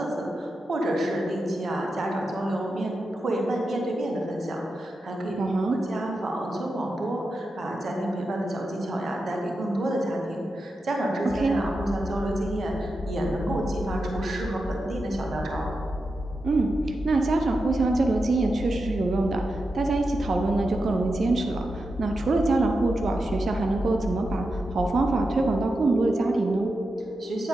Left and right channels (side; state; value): both; normal; correlation 0.89